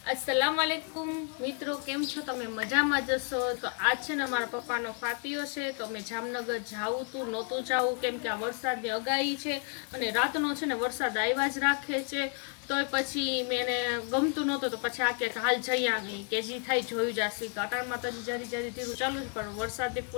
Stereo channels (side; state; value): right; quieter; 39.4 dB